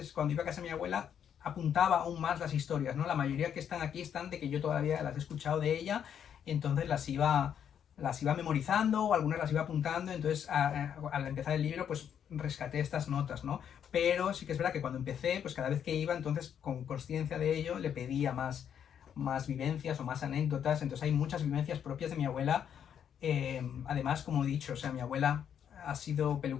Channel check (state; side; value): quieter; right; 8.7 dB